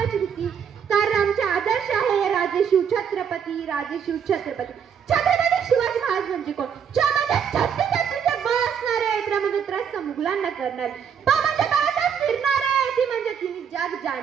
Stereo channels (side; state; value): left; quieter; 7.6 dB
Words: भीती, कारण आमचे आदर्श आहे राजे शिवछत्रपती, राजे शिवछत्रपती. छत्रपती शिवाजी महाराज म्हणजे कोण? म्हणजे छत्तीसचे बळ असणारे, त्र म्हणजे त्रस्त मुघलांना करणारे, प म्हणजे भारतात फिरणारे, ती म्हणजे तिने जग